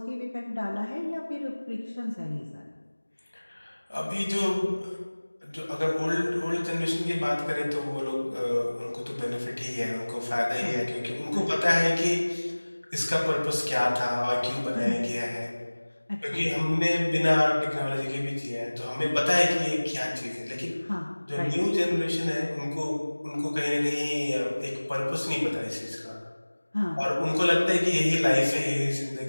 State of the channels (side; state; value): both; inverted; correlation -1.00